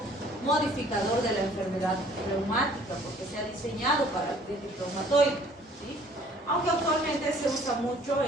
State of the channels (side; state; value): both; normal; correlation 0.56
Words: modificador de la enfermedad reumática, porque se ha diseñado para artritis reumatoide, ¿sí? Aunque actualmente se usa mucho